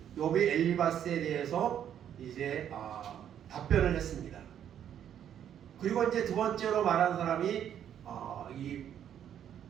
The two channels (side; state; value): left; quieter; 9.7 dB